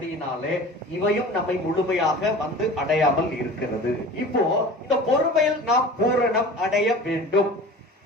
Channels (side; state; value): both; normal; correlation 0.39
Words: இவையும் நம்மை முழுமையாக வந்து அடையாமல் இருக்கிறது. இப்போ இந்த பொறுமையில் நாம் பூரணம் அடைய வேண்டும்.